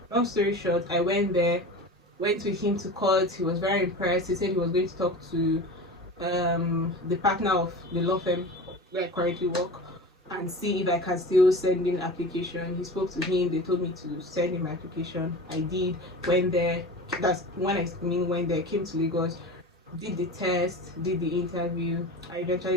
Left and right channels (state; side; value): normal; both; correlation 0.33